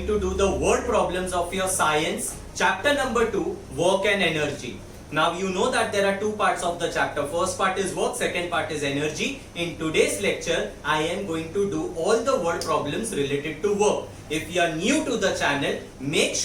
to do the word problems of your science, chapter number 2, work and energy. Now you know that there are two parts of the chapter. First part is work, second part is energy. In today's lecture, I am going to do all the word problems related to work. If you are new to the channel, make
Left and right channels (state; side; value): identical; both; correlation 1.00